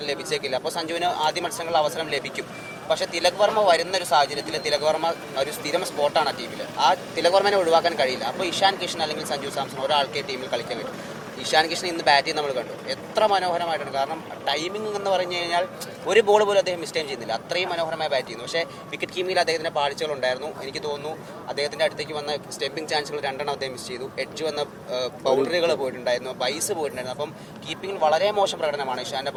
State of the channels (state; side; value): identical; both; correlation 1.00